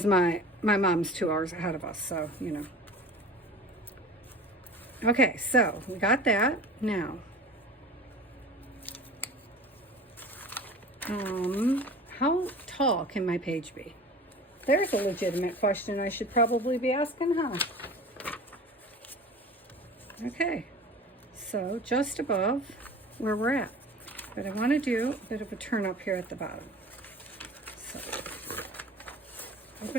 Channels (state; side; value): normal; both; correlation 0.39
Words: my mom's 2 hours ahead of us, so, you know. Okay, so we got that. Now, how tall can my page be? There's a legitimate question I should probably be asking, huh? Okay, so just above where we're at. But I want to do a bit of a turn up here at the bottom. So,